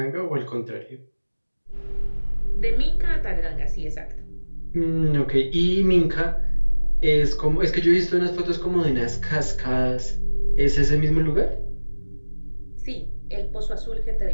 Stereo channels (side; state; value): both; inverted; correlation -1.00